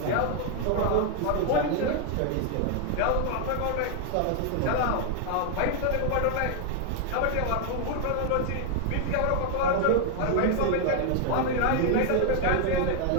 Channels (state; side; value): different; both; correlation 0.00